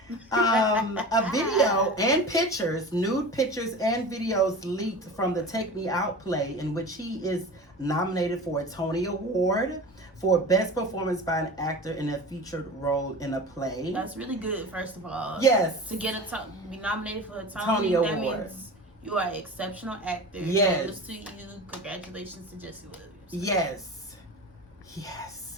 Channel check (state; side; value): normal; both; correlation 0.34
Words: A video and pictures, nude pictures and videos leaked from the Take Me Out play, in which he is nominated for a Tony Award for Best Performance by an Actor in a Featured Role in a Play. That's really good, first of all. Yes. To get be nominated for a Tony Award. That means you are an exceptional actor. Yes. Kudos to you. Congratulations to Jesse Williams. Yes.